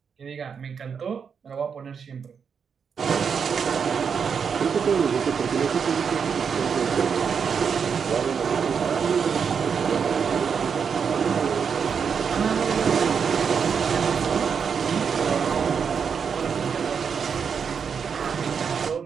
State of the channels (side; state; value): left; quieter; 6.5 dB